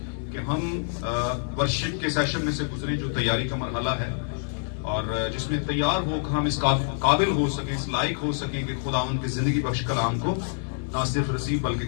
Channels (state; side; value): silent; right; digital silence